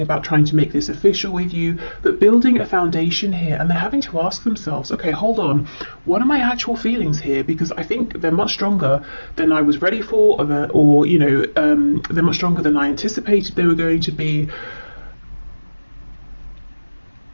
about trying to make this official with you, but building a foundation here. And they're having to ask themselves, okay, hold on, what are my actual feelings here? Because I think they're much stronger than I was ready for, they're much stronger than I anticipated they were going to be.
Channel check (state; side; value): inverted; both; correlation -1.00